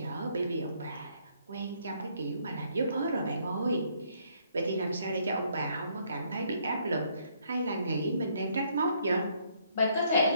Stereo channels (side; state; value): both; inverted; correlation -0.68